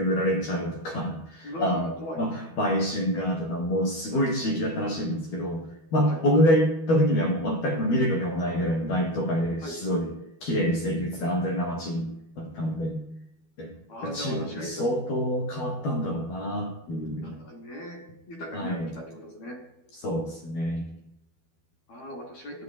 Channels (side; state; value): right; late; 12 ms